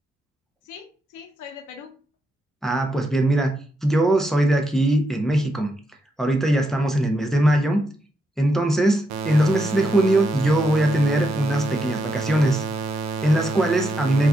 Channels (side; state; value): both; normal; correlation 0.81